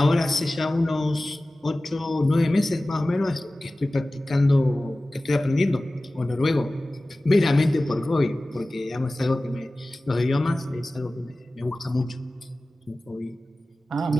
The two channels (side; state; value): both; normal; correlation 0.97